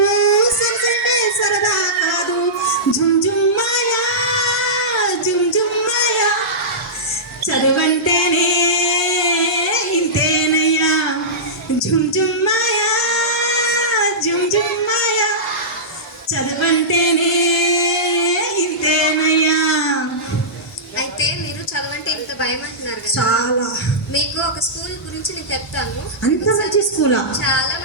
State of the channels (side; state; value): both; normal; correlation -0.16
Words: సైన్స్ అంటే సరదా కాదు. జుమ్ జుమ్ మాయా, జుమ్ జుమ్ మాయా, చదువంటేనే ఇంతేనయ్యా, జుమ్ జుమ్ మాయా, జుమ్ జుమ్ మాయా, చదువంటేనే భయం అంటున్నారు కదా. చాలా. మీకు ఒక స్కూల్ గురించి నేను చెప్తాను. అంత మంచి స్కూలా? చాలా